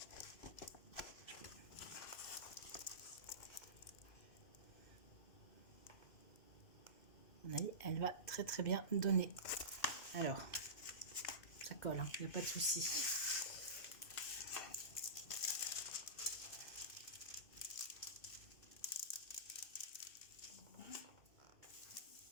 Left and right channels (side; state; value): right; late; 2.6 ms